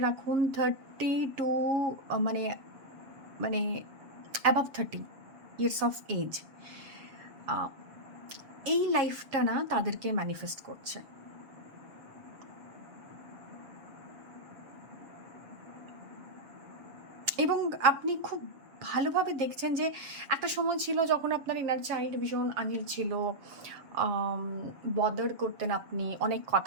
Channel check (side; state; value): left; late; 7.3 ms